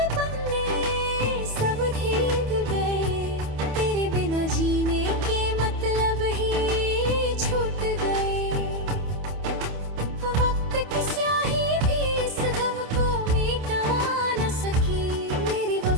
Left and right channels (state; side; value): late; left; 28 ms